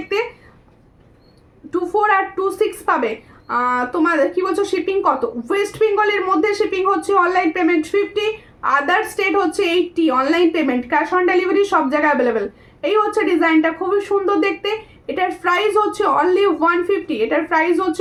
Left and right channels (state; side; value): identical; both; correlation 1.00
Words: 24 আর 26 পাবে। তোমার কি বলছো শিপিং কত? ওয়েস্ট বেঙ্গলের মধ্যে শিপিং হচ্ছে অনলাইন পেমেন্ট 50, আদার স্টেট হচ্ছে 80, online payment, cash on delivery সব জায়গায় অ্যাভেলেবেল। এই হচ্ছে ডিজাইনটা, খুবই সুন্দর দেখতে, এটার প্রাইস হচ্ছে অনলি 150, এটার প্রাইস হচ্ছে